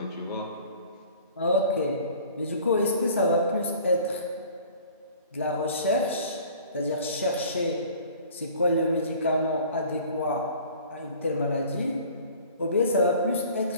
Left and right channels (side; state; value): both; inverted; correlation -0.48